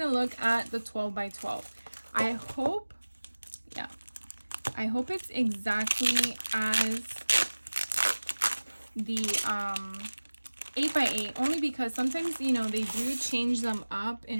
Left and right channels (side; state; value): both; inverted; correlation -1.00